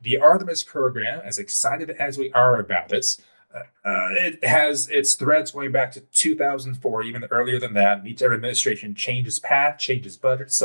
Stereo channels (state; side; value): inverted; both; correlation -1.00